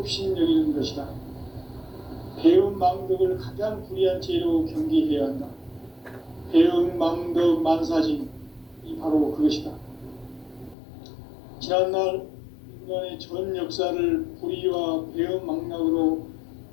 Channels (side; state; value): right; drops out; at 10.8 s